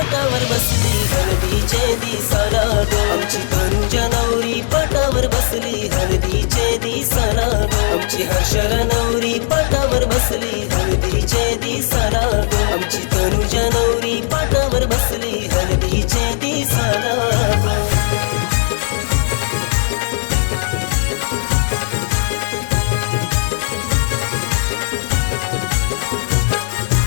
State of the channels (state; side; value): silent; right; digital silence